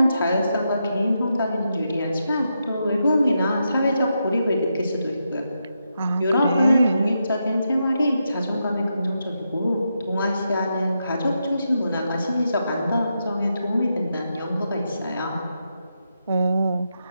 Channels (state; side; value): inverted; both; correlation -0.84